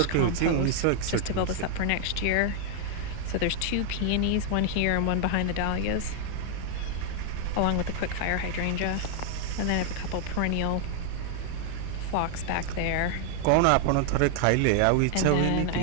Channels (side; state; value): both; different; correlation 0.00